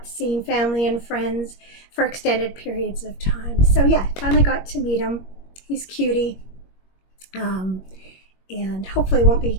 seen family and friends for extended periods of time. So yeah, finally got to meet him. He's cutie. And hopefully it won't be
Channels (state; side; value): late; right; 21 ms